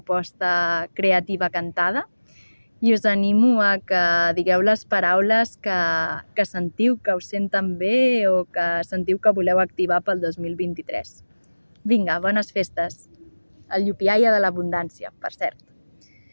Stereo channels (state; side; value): inverted; both; correlation -1.00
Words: creativa cantada i us animo a que digueu les paraules que sentiu, que us senten bé o que sentiu que voleu activar pel 2023. Vinga, bones festes! El llupiaia de l'abundància, per cert.